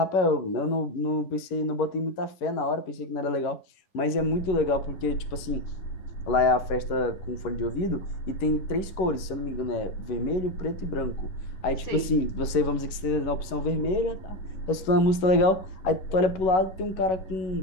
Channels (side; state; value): right; late; 11 ms